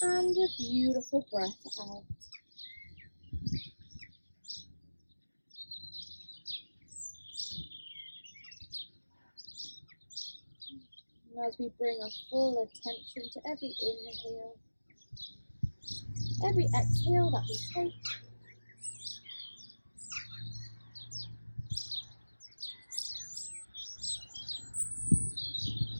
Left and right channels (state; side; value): inverted; both; correlation -1.00